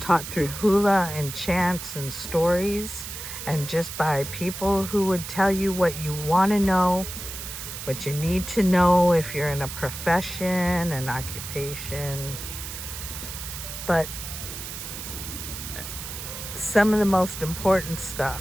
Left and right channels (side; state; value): right; noise; hiss, 9 dB below the sound